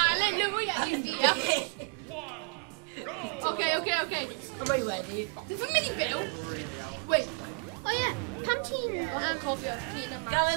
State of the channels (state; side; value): quieter; left; 31.3 dB